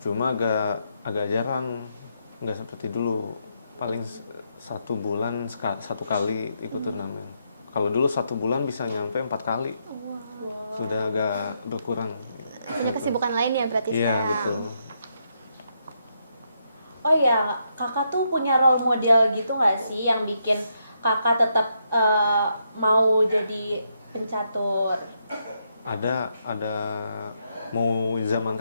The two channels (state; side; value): inverted; both; correlation -0.79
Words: cuma agak jarang, nggak seperti dulu. Paling 1 bulan satu kali ikut turnamen. Kalau dulu 1 bulan bisa nyampe 4 kali. Sudah agak berkurang. Punya kesibukan lain ya berarti Iya, sekarang? betul. Oh ya, kakak tuh punya role model gitu nggak sih yang bikin kakak tetap mau jadi pencatur? Ada mau zaman